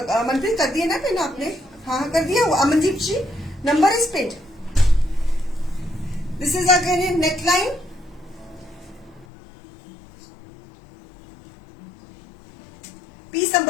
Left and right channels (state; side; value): drops out; right; at 9.2 s